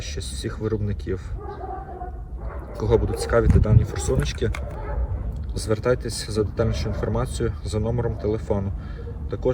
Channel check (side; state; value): both; identical; correlation 1.00